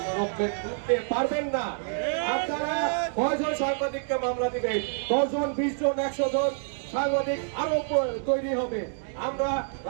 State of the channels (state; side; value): silent; left; digital silence